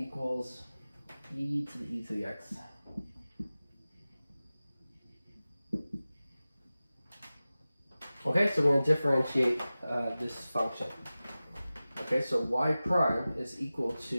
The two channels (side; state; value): both; inverted; correlation -0.96